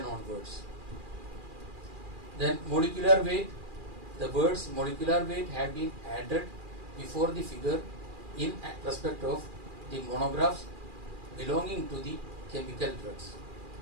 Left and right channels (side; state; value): left; late; 2.4 ms